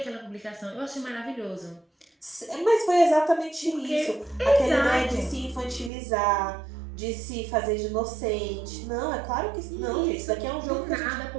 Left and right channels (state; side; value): drops out; left; at 5.9 s